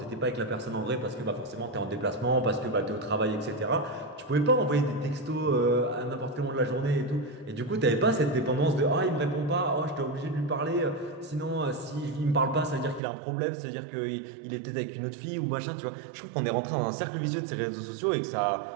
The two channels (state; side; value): drops out; left; at 13.0 s